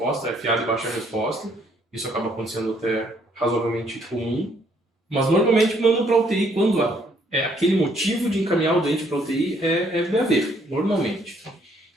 FA de baixa resposta, isso acaba acontecendo até razoavelmente comum, mas normalmente mandam para a UTI quando aquele motivo de encaminhar o doente para a UTI é BAV, normalmente.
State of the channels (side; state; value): both; normal; correlation 0.67